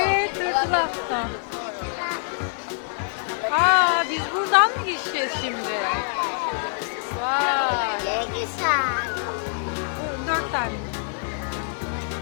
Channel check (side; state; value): right; silent; digital silence